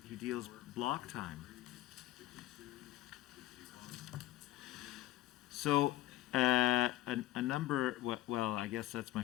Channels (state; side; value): quieter; right; 15.3 dB